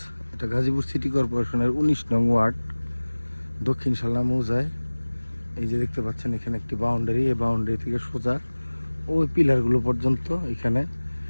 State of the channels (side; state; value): both; inverted; correlation -1.00